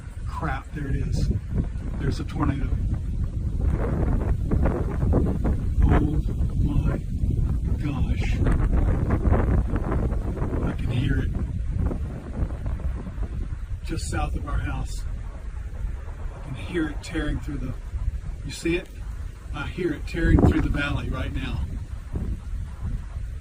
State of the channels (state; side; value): identical; both; correlation 1.00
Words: Crap, there it is. There's a tornado. Oh my gosh. I can hear it. Just south of our house. I can hear it tearing through the, you see it? I hear it tearing through the valley right now.